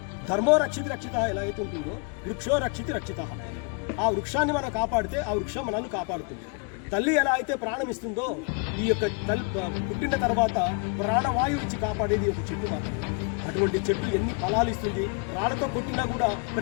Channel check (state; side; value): quieter; right; 35.7 dB